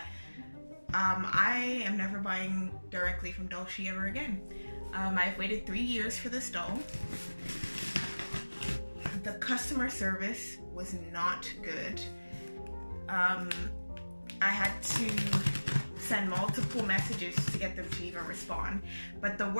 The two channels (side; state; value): both; inverted; correlation -1.00